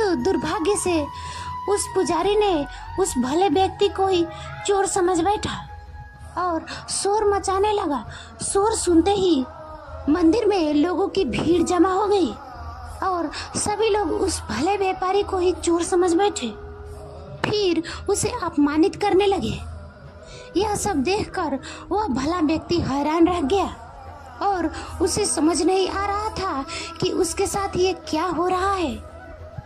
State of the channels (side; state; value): both; identical; correlation 1.00